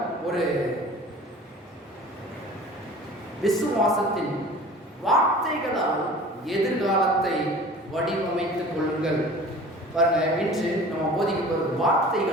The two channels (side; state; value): both; normal; correlation 0.43